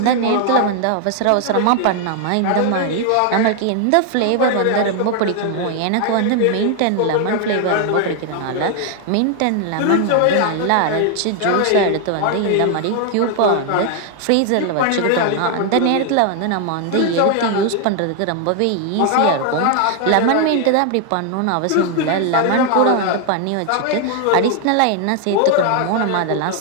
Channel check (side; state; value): both; different; correlation 0.00